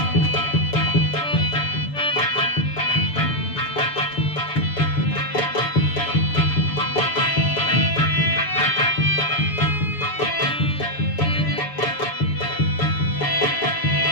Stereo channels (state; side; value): late; right; 7.0 ms